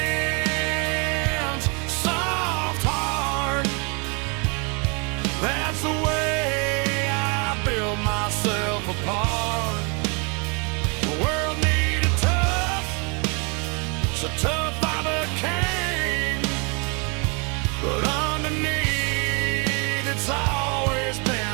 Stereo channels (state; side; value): quieter; left; 33.3 dB